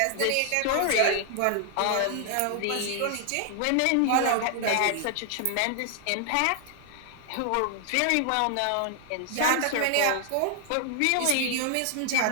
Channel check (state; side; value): different; both; correlation 0.00